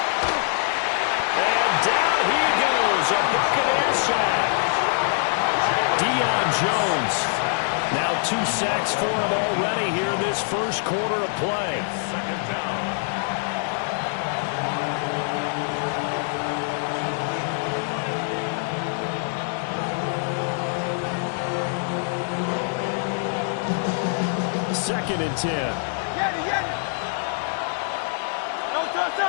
And down he goes. A Buccaneer sack. Deion Jones. Now 2 sacks for him already here in this first quarter of play. Second down. Second and 10.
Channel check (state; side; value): silent; right; 62 dB below the other